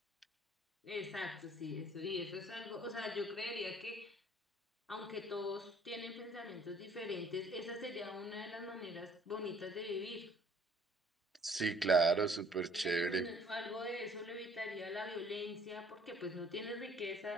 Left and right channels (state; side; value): normal; both; correlation 0.57